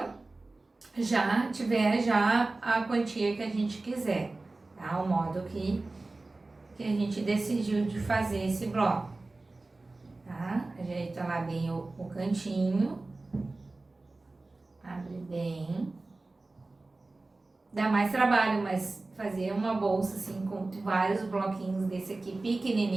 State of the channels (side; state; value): left; quieter; 3.2 dB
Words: já tiver já a quantia que a gente quiser, tá? O modo que a gente decidiu de fazer esse bloco, tá? Ajeita lá bem o cantinho, abre bem, dá mais trabalho, mas fazer uma bolsa assim com vários bloquinhos desse aqui